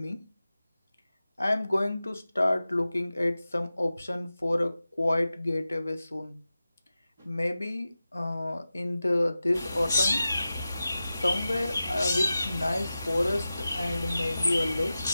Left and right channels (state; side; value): inverted; both; correlation -0.94